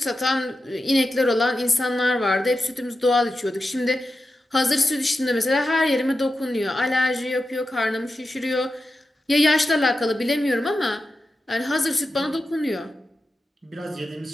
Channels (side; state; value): both; normal; correlation 0.91